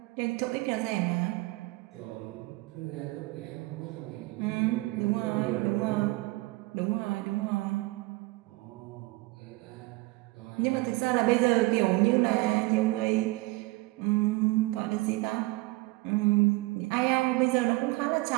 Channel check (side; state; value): left; quieter; 22.1 dB